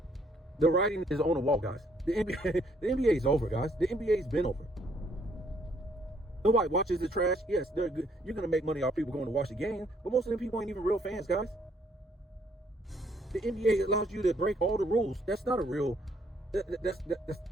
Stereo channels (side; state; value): both; normal; correlation 0.67